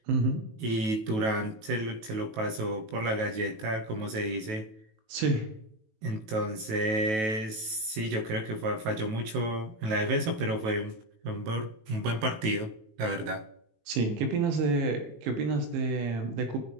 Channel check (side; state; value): left; late; 18 ms